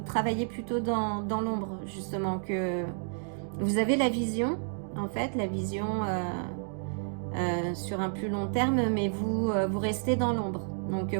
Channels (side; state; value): left; silent; digital silence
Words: travaillez plutôt dans l'ombre, justement, que vous avez la vision en fait, la vision sur un plus long terme, mais vous restez dans l'ombre, donc